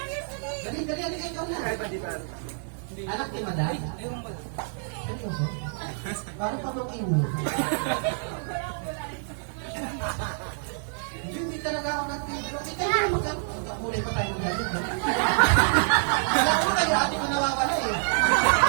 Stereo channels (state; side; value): silent; left; digital silence